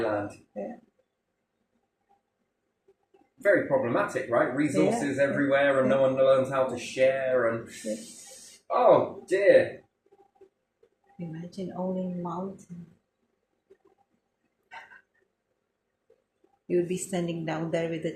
Yeah. Very problematic, right? Resources everywhere and no one learns how to share and... Oh, dear. Imagine owning mountain. You'll be standing down there with a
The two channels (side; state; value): both; identical; correlation 1.00